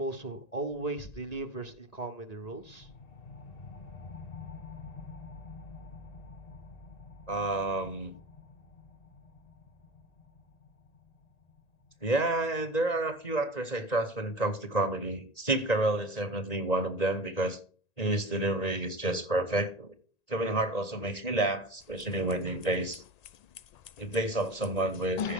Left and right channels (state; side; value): late; right; 1.9 ms